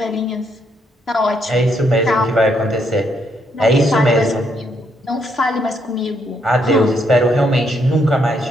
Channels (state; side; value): normal; both; correlation 0.74